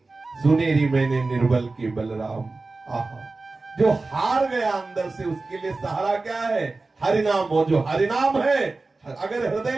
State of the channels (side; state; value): left; quieter; 3.5 dB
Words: सुनेरी मैंने निर्बल के बलराम। आहा, जो हार गया अंदर से उसके लिए सहारा क्या है? हरिनाम। हो जो हरिनाम है, अगर